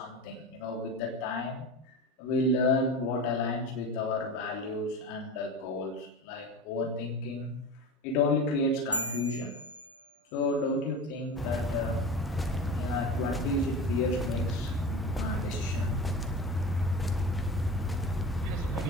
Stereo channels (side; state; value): both; normal; correlation 0.30